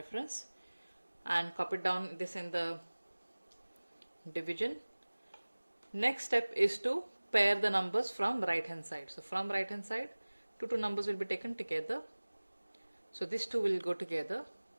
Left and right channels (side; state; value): both; inverted; correlation -1.00